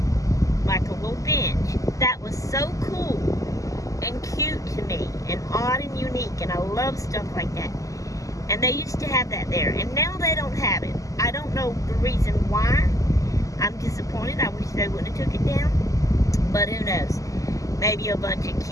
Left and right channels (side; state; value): right; late; 0.16 ms